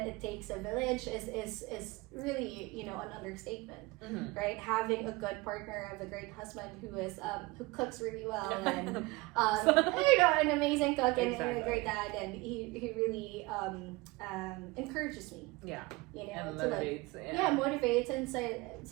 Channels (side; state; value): left; quieter; 23.1 dB